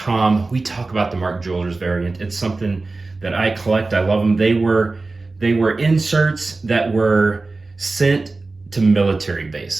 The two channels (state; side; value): quieter; left; 3.5 dB